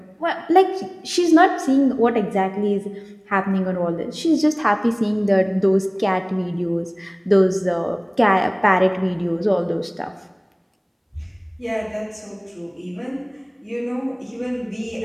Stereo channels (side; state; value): both; identical; correlation 1.00